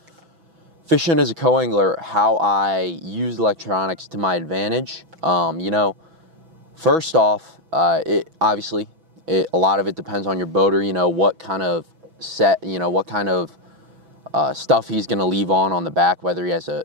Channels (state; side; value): late; left; 6.1 ms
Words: fishing as a co-angler, how I use electronics to my advantage. First off, a lot of it depends on your boater, what kind of stuff he's going to leave on the back, whether he has